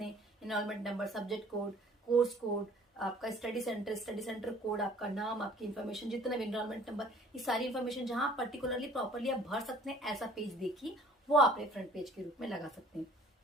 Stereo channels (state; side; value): normal; both; correlation 0.53